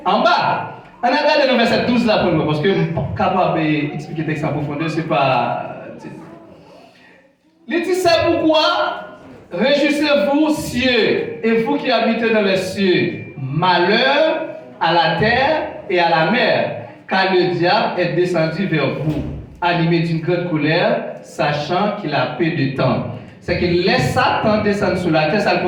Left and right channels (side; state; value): both; identical; correlation 1.00